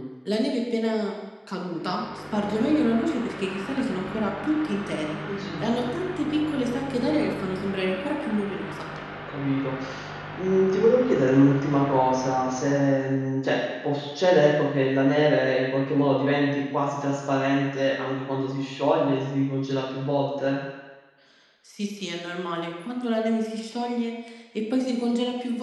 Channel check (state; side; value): identical; both; correlation 1.00